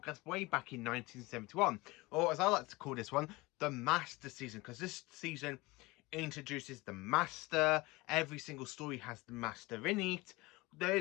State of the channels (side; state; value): right; quieter; 22.0 dB